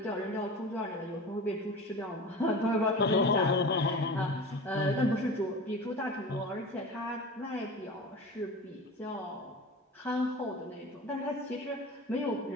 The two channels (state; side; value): normal; both; correlation 0.33